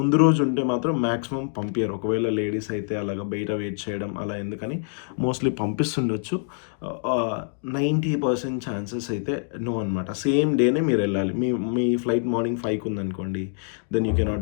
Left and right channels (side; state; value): right; silent; digital silence